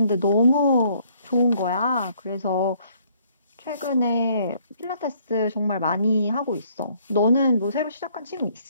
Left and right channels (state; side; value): inverted; both; correlation -0.64